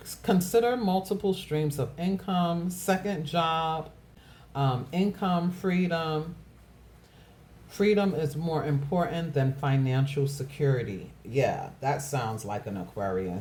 Consider multiple streams of income, second job, income, freedom. Freedom is more important than financial security. Yeah, that sounds like an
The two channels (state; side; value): identical; both; correlation 1.00